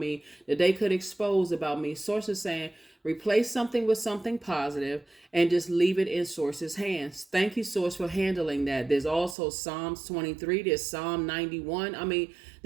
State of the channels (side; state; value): left; drops out; at 9.3 s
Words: that they could expose about me. Source is saying, replace something with something positive and just leave it in Source's hands. Thank you, Source, for handling that. There's also Psalms 23. There's Psalm 91. I mean,